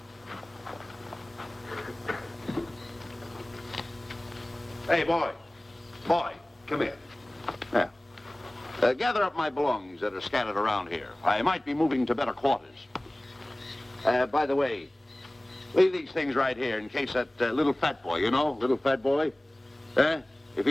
Hey, boy. Boy, come here. Yeah. Gather up my belongings that are scattered around here. I might be moving to better quarters. By the way, leave these things right here in case that little fat boy, you know, little fat boy, if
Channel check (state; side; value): normal; both; correlation 0.98